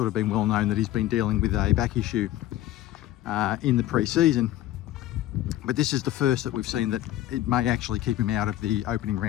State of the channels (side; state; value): right; quieter; 14.0 dB